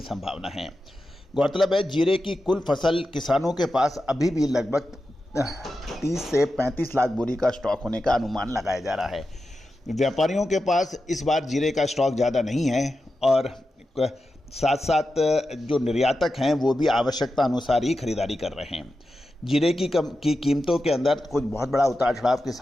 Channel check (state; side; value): normal; both; correlation 0.91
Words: संभावना है। गौरतलब है जीरे की कुल फसल किसानों के पास अभी भी लगभग 30 से 35 लाख बोरी का स्टॉक होने का अनुमान लगाया जा रहा है। व्यापारियों के पास इस बार जीरे का स्टॉक ज़्यादा नहीं है और साथ साथ जो निर्यातक हैं वो भी आवश्यकता अनुसार ही खरीदारी कर रहे हैं। जीरे की कीमतों के अंदर कुछ बहुत बड़ा उतार चढ़ाव की